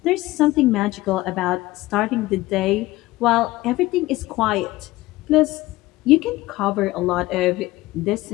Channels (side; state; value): right; quieter; 18.4 dB